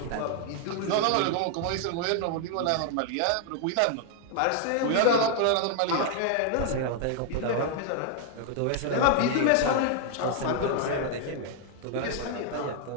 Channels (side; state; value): both; different; correlation 0.00